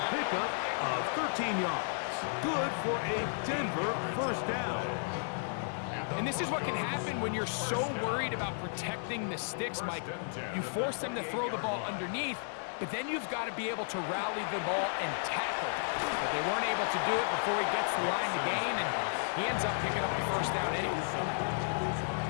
pickup of 13 yards. Good for a Denver first down. And this is what can happen when you're so worried about protecting the sticks, Mike. You force them to throw the ball underneath, but then you've got to be able to rally the ball and tackle. But they weren't able to do it before he gets the line to gain, and he ends up picking up the first down anyway.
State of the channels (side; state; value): right; silent; digital silence